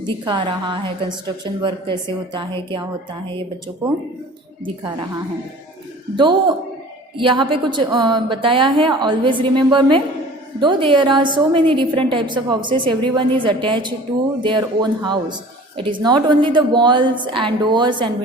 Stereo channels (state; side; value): normal; both; correlation 0.44